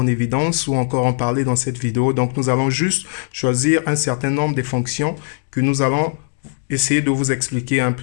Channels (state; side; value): silent; right; 65 dB below the other